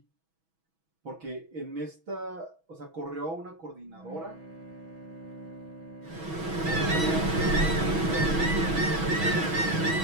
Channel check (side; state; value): left; late; 6.2 ms